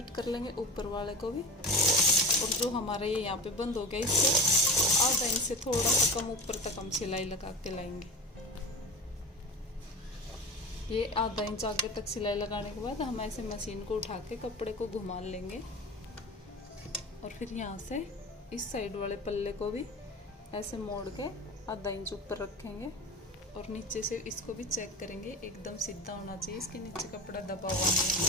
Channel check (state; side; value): normal; both; correlation 0.31